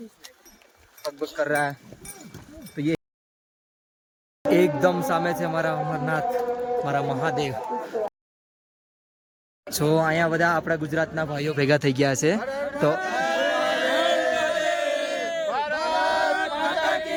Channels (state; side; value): identical; both; correlation 1.00